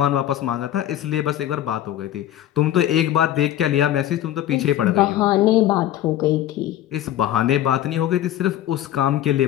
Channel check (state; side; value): quieter; right; 12.5 dB